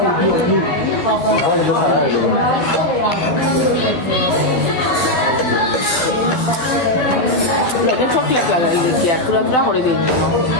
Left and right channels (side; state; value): right; late; 12 ms